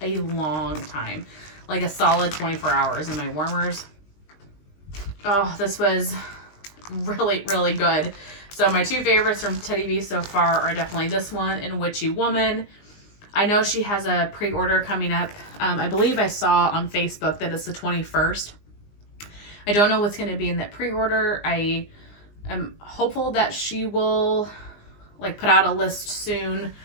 a long time, like a solid 24 hours in my warmers. Oh, this was really, really good. So my 2 favorites from Teddy B so far are definitely this one and Witchy Woman. I know she has a pre-order coming up. I believe I saw on Facebook that it's the 21st. I don't know what's going to be in that pre-order. I am hopeful that she will like put out a list soon,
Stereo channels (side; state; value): right; late; 19 ms